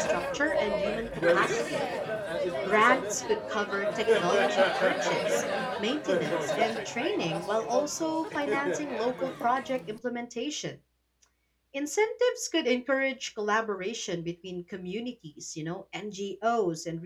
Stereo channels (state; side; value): identical; both; correlation 1.00